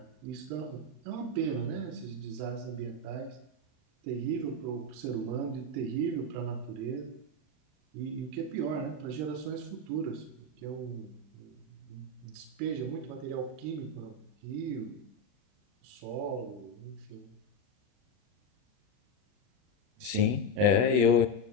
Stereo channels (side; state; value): left; late; 39 ms